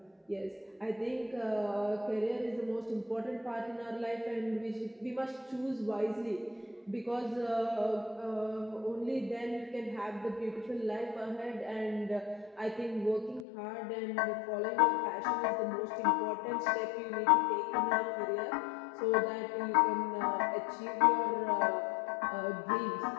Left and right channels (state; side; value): drops out; right; at 13.5 s